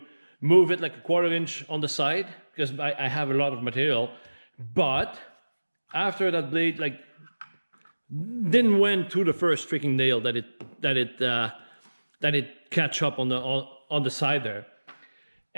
move it like a 1/4 inch on the side because I have a lot of material. But after that blade like didn't went through the first freaking nail that it catch up on the side there.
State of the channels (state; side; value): inverted; both; correlation -1.00